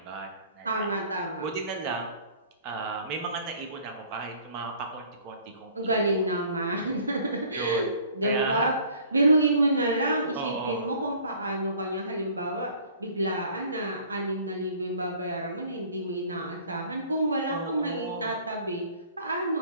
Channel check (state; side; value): inverted; both; correlation -0.53